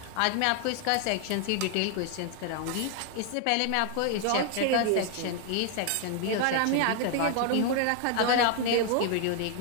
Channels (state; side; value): different; both; correlation 0.00